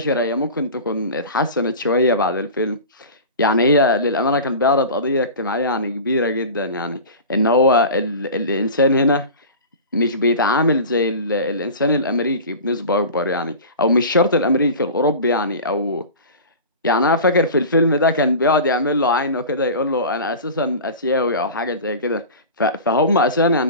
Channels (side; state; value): both; inverted; correlation -0.34